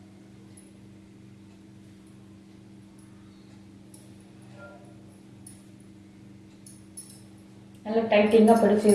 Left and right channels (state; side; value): identical; both; correlation 1.00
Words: நல்லா டைட்டிங்காக பிடிச்சி